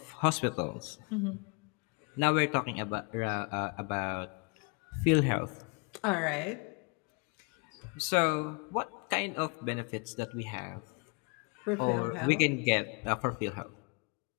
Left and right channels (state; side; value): quieter; right; 32.6 dB